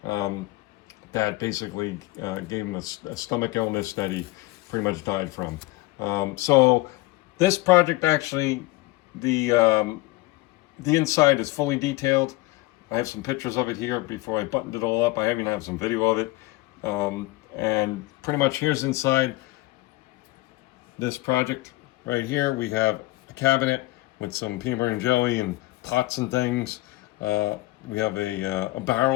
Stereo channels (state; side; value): quieter; right; 19.7 dB